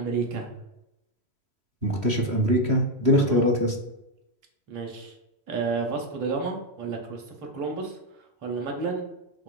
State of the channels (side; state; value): left; late; 3.1 ms